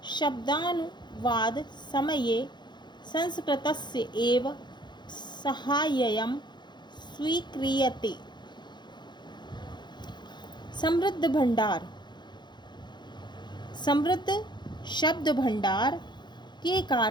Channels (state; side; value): late; right; 0.21 ms